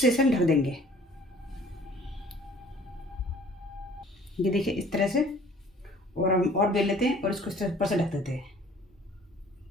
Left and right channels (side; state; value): both; normal; correlation 0.52